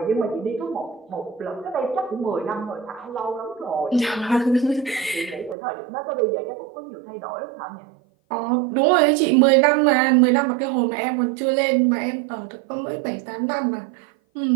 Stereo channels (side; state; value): left; drops out; at 5.6 s